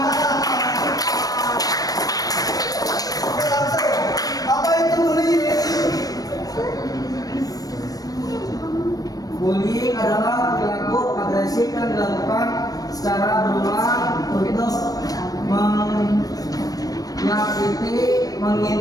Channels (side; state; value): right; late; 0.18 ms